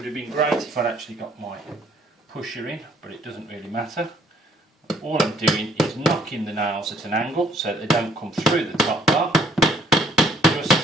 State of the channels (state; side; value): normal; both; correlation 0.62